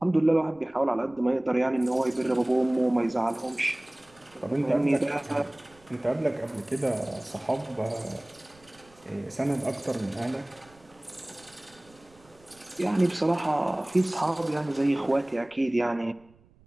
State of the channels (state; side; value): noise; right; rumble, 29 dB below the sound